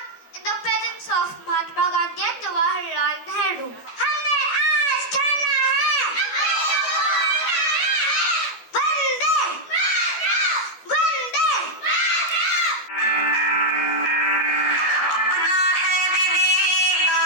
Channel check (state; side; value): late; right; 12 ms